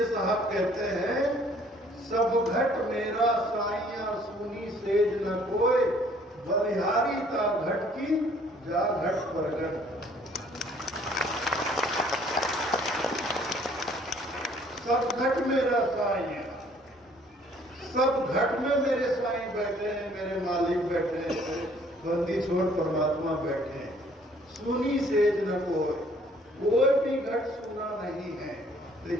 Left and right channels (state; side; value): normal; both; correlation 0.59